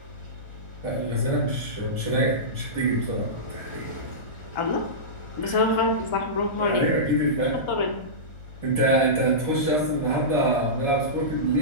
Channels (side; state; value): right; late; 1.4 ms